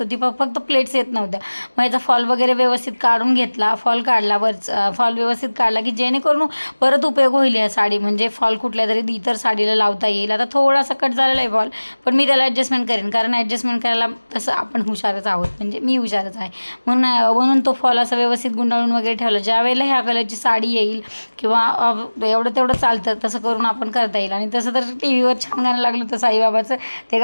होती. फक्त प्लेट्स येत नव्हत्या. मग याचा फॉल वगैरे व्यवस्थित काढून घेतला, फॉल काढला, फॉल व्यवस्थित काढला की जेणेकरून परत उपयोग होईल या साडी. म्हणजे फॉल कुठल्या तरी इतर साडीला लावता येईल. आता थोडासा कट झालेला आहे फॉल, पण मी त्याला ॲडजस्टमेंट करेन, कारण ॲडजस्टमेंट करायला तसं आपण हुशारच आहोत, म्हणजे मी हुशारच आहे. म्हणून तो फॉल असा व्यवस्थित गुंडाळून वगैरे ठेवला. ज्या वेळेला ह्या कलरची साडी येईल किंवा एवढं तेवढं चालतं तसं करून आपण करता येईल. आणि तसं तर टी व्हीवर छान गाणं लागलं होतं साईबाबाचं, ते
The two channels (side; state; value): both; inverted; correlation -1.00